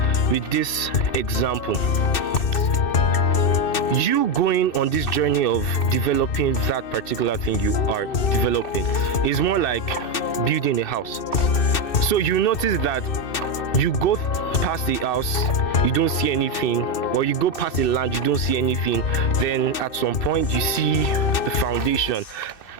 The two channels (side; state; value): right; late; 2.6 ms